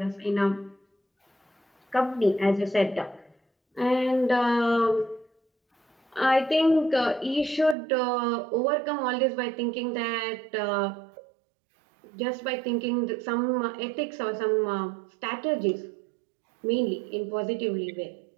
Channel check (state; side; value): drops out; left; at 7.8 s